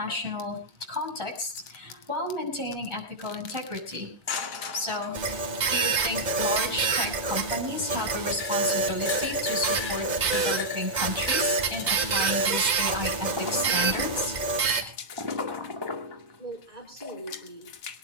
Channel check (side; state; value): left; late; 2.0 ms